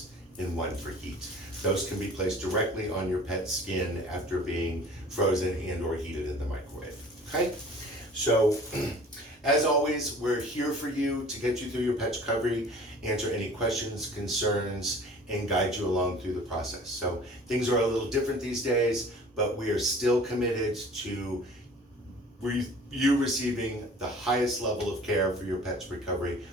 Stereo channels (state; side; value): normal; both; correlation 0.47